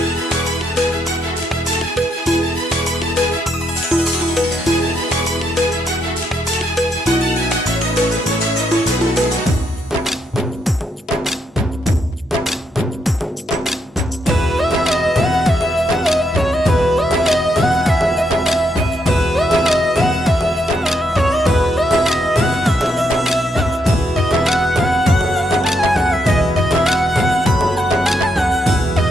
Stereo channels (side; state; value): both; normal; correlation 0.77